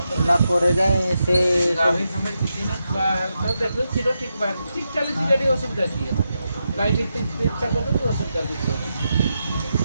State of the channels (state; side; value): inverted; both; correlation -0.86